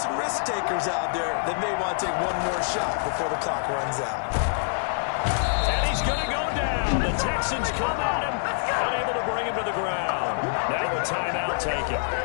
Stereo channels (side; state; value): right; silent; digital silence